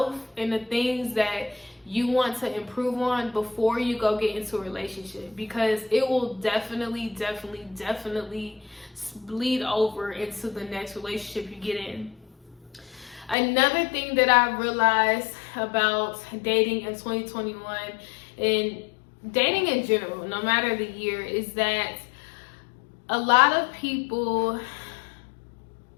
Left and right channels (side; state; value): right; drops out; at 13.4 s